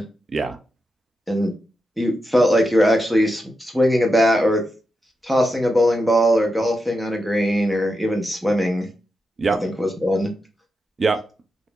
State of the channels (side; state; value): both; normal; correlation 0.87